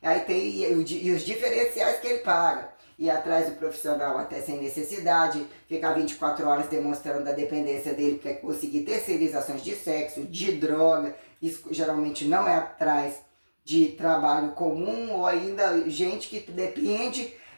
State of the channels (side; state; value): both; inverted; correlation -1.00